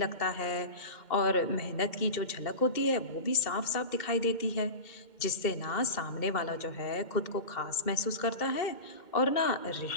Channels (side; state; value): right; late; 2.1 ms